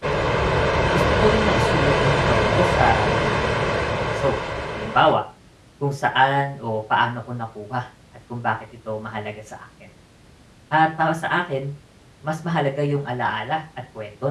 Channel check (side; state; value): both; identical; correlation 1.00